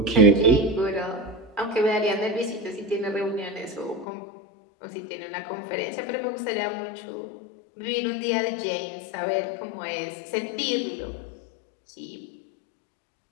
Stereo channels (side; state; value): right; drops out; at 4.0 s